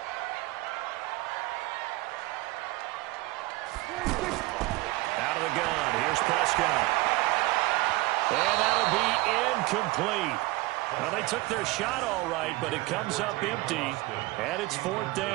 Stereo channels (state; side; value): quieter; left; 21.2 dB